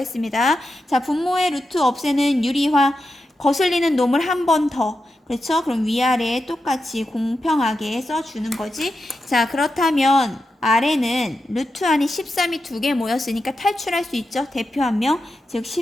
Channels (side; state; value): both; normal; correlation 0.89